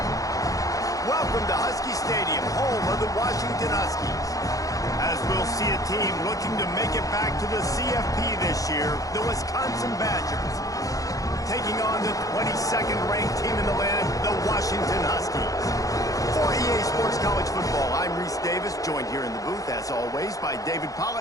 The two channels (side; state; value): right; late; 0.17 ms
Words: Welcome to Husky Stadium, home of the Washington Huskies. As we'll see a team looking to make it back to the CFP this year, the Wisconsin Badgers, taking on the 22nd ranked team in the land, the Washington Huskies. For EA Sports College Football, I'm Reese Davis, joined here in the booth, as always, by David